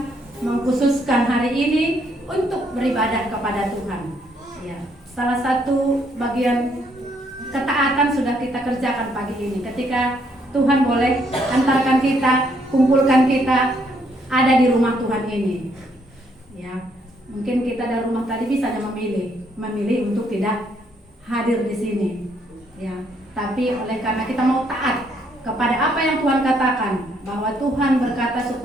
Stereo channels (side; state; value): both; normal; correlation 0.71